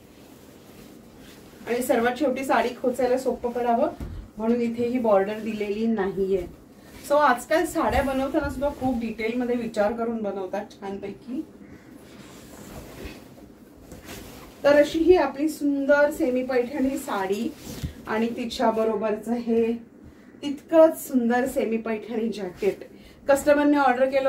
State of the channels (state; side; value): identical; both; correlation 1.00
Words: आणि सर्वात शेवटी साडी खोचायला सोपं पडावं म्हणून इथे ही बॉर्डर दिलेली नाहीये। सो आजकाल साड्या बनवताना सुद्धा खूप डिटेल मध्ये विचार करून बनवतात छानपैकी। तर अशी ही आपली सुंदर सेमी पैठणी साडी आणि तिच्या बरोबरच हे तितकंच सुंदर सेमी पैठणी जॅकेट कस्टमरने ऑर्डर केलं